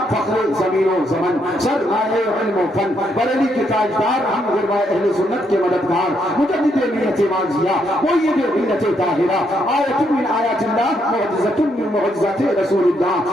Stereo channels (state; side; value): normal; both; correlation 0.75